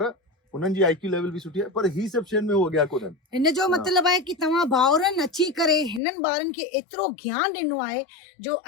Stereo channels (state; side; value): drops out; right; at 6.0 s